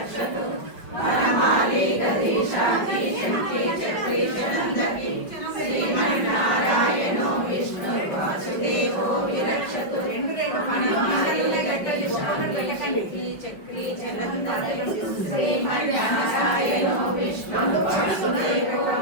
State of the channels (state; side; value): late; right; 5.6 ms